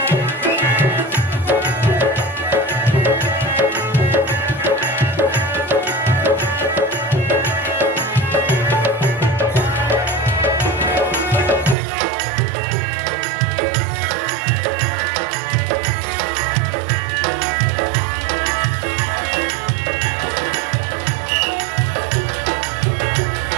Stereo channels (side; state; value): left; drops out; at 11.8 s